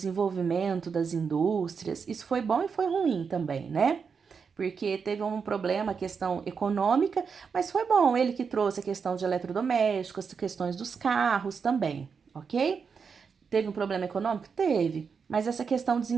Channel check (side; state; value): left; quieter; 5.9 dB